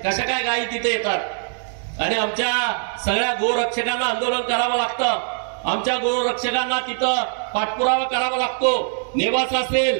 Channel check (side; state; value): left; silent; 64 dB below the other